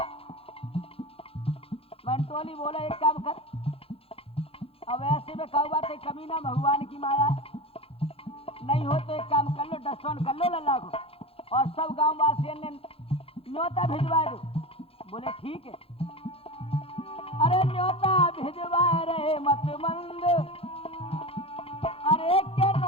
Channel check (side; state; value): right; late; 0.27 ms